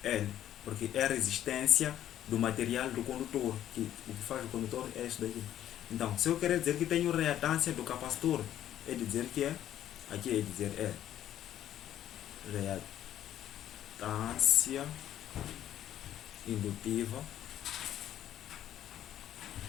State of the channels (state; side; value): quieter; right; 11.5 dB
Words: porque é a resistência do material do condutor, que o que faz o condutor é isso daqui. Então, se eu quero dizer que tenho reatância do capacitor, é dizer que é, aqui é dizer é reatância reatância indutiva,